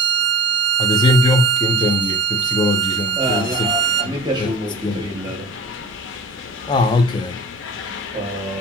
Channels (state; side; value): normal; both; correlation 0.38